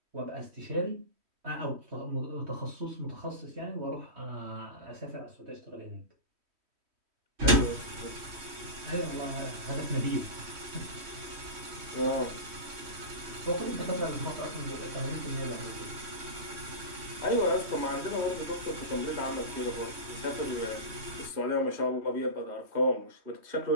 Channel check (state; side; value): late; left; 3.1 ms